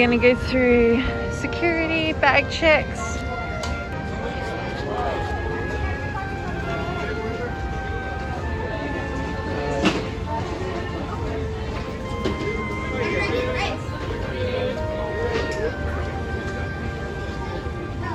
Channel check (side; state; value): both; identical; correlation 1.00